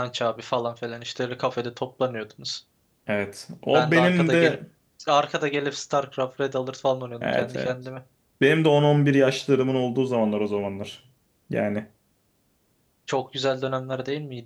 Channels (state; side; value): identical; both; correlation 1.00